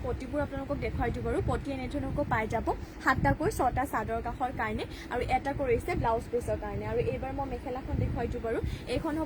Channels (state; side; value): identical; both; correlation 1.00